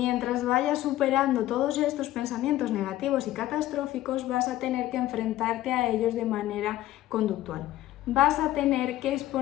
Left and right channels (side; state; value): right; quieter; 14.6 dB